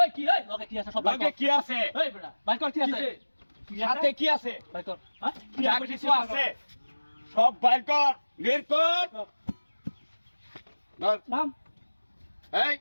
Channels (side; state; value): both; inverted; correlation -1.00